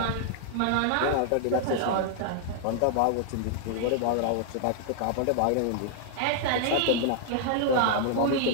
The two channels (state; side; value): different; both; correlation 0.00